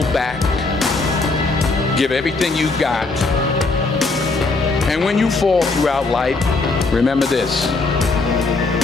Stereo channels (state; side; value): quieter; right; 3.6 dB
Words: back. Give everything you got. And when you fall throughout life, remember this: